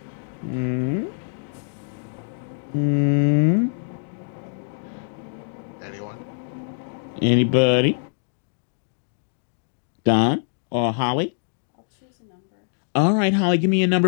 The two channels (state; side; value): silent; right; digital silence